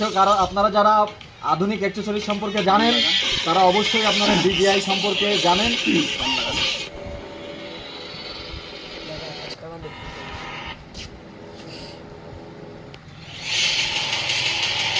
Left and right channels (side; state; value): both; identical; correlation 1.00